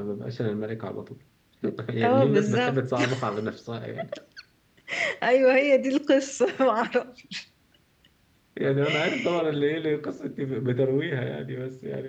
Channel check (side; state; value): both; identical; correlation 1.00